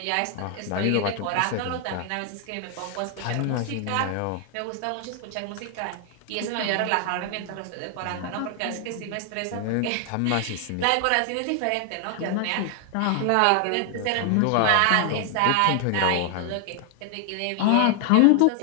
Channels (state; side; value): different; both; correlation 0.00